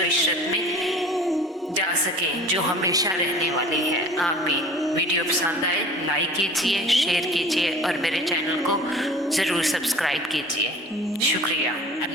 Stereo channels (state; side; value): normal; both; correlation 0.44